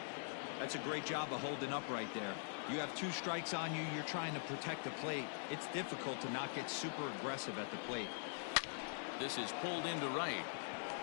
That's a great job of holding up right there. You have 2 strikes on you. You're trying to protect the plate. It's difficult to not get super aggressive at the plate. This is pulled into right.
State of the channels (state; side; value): silent; right; digital silence